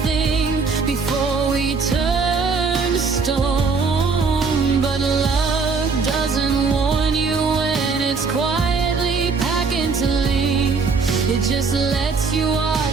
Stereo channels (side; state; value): left; quieter; 4.7 dB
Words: thing before we turned to stone. But love doesn't warn you when it's quietly packing to leave. It just lets you